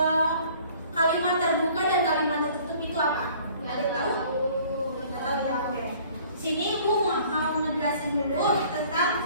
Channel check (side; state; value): both; inverted; correlation -0.54